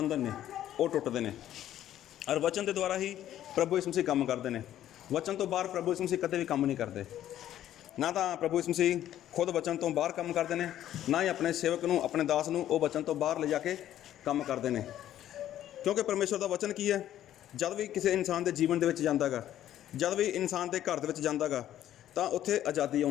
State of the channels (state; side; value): quieter; right; 12.0 dB